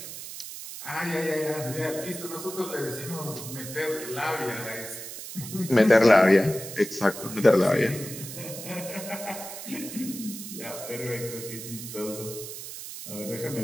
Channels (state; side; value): noise; right; hiss, 10 dB below the sound